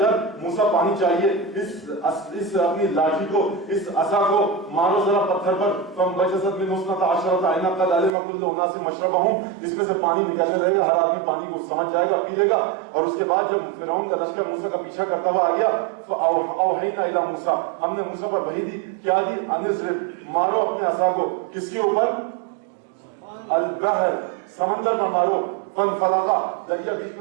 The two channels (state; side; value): drops out; left; at 8.1 s